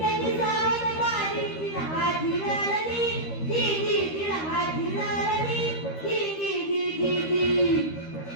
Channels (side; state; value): right; late; 13 ms